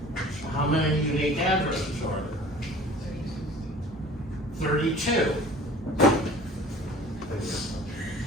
So how many unique addresses are there? 32.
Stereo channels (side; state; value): both; normal; correlation 0.46